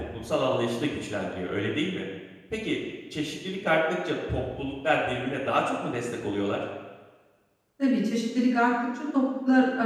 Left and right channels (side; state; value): both; identical; correlation 1.00